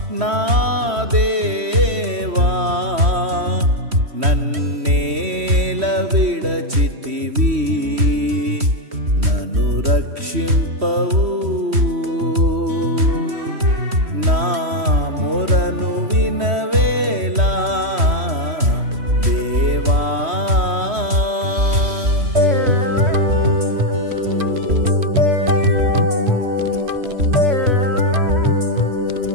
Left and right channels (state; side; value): late; left; 3.1 ms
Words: నా దేవా నన్నేల విడచితివి, నన్ను రక్షింపవు నా మొరను వినవేలా, దేవా.